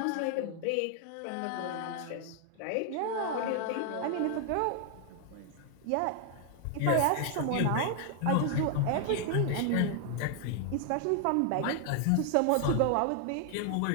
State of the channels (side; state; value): both; different; correlation 0.00